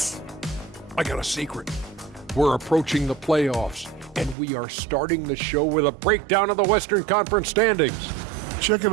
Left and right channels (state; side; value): drops out; left; at 4.4 s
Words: I got a secret. We're approaching the playoffs, and we are starting the show with a breakdown of the Western Conference standings. Checking